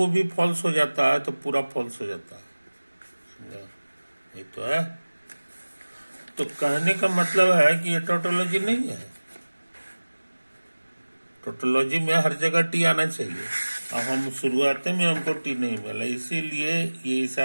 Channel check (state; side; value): inverted; both; correlation -1.00